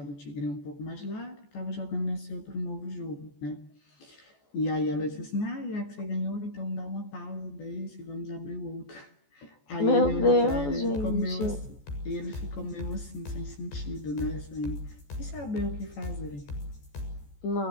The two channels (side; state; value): right; late; 14 ms